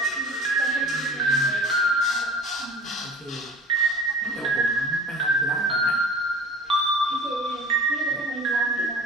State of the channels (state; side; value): normal; both; correlation 0.41